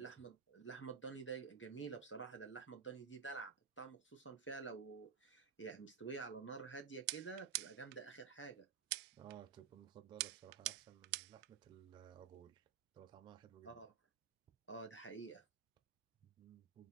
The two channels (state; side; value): quieter; left; 7.6 dB